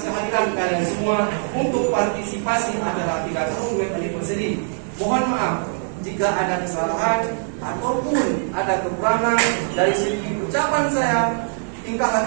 kehadiran kalian semua untuk partisipasi acara 3 tahun web anniversary. Mohon maaf jika ada kesalahan ataupun ada kekurangan dari segi ucapan saya, tingkah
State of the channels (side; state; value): left; silent; digital silence